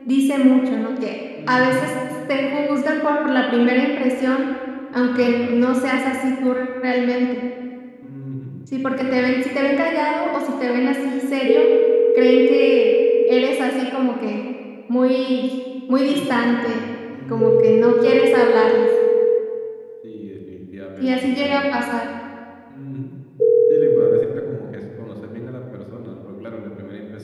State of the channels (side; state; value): both; identical; correlation 1.00